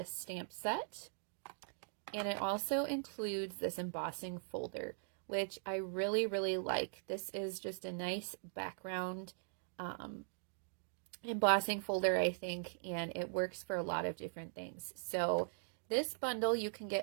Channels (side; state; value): left; silent; digital silence